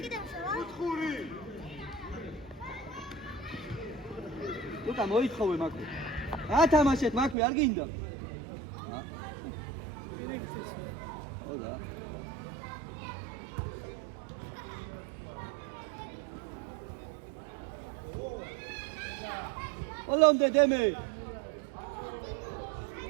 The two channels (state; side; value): drops out; left; at 7.4 s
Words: Luca, მოითხოვე მაქვე. ათამაშეთ მაქვე, არ გინდა? ოდა. Olonde deme.